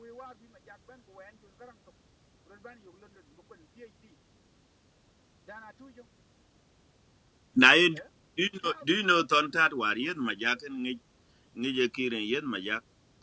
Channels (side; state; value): both; identical; correlation 1.00